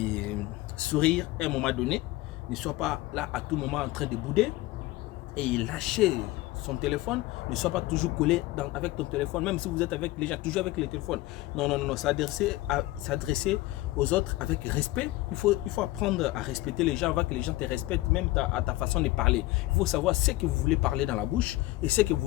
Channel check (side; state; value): right; quieter; 18.3 dB